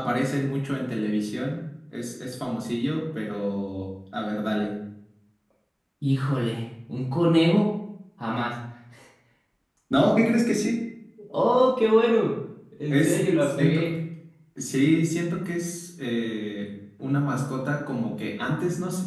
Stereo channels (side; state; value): both; identical; correlation 1.00